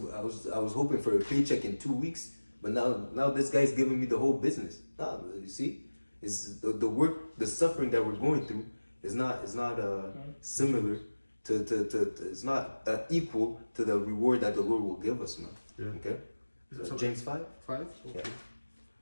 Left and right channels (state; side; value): inverted; both; correlation -1.00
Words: hoping for a paycheck in 2 weeks, but now this guy's giving me the whole business. Nah, you see, it's the work, the suffering that we're going through is not similar to it's not equal to the reward that the Lord will give us, man. Yeah. Okay. James 5. Okay.